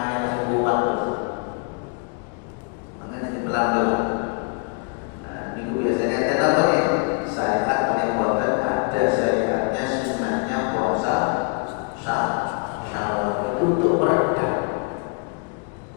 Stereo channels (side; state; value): right; quieter; 39.5 dB